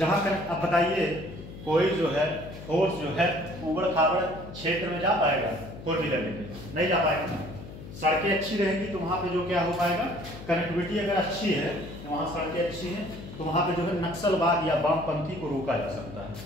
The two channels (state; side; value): noise; left; hum, 13 dB below the sound